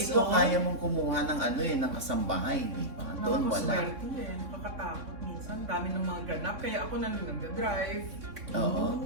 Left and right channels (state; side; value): late; left; 3.6 ms